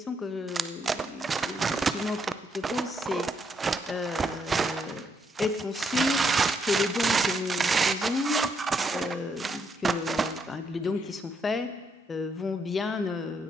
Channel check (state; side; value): normal; both; correlation 0.76